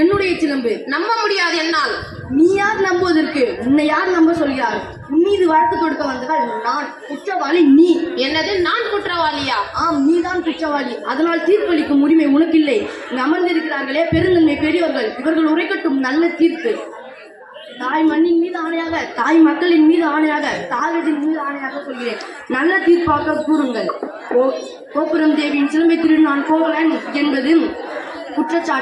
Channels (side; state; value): both; identical; correlation 1.00